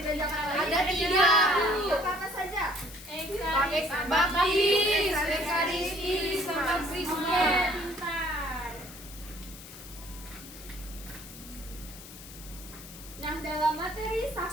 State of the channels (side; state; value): left; noise; hiss, 16 dB below the sound